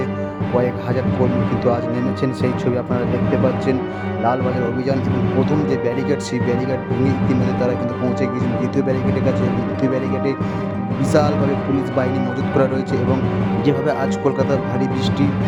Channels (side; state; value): both; identical; correlation 1.00